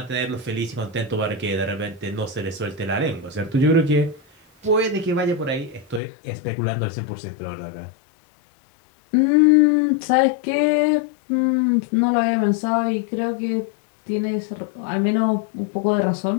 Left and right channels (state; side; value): drops out; right; at 6.0 s